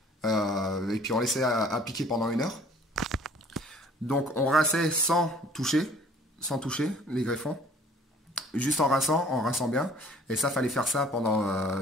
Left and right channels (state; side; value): normal; both; correlation 0.53